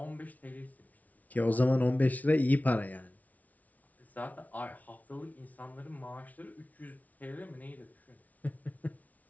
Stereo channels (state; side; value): late; right; 0.073 ms